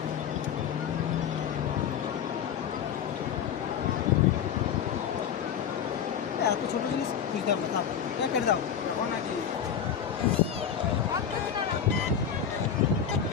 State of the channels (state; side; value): quieter; right; 8.3 dB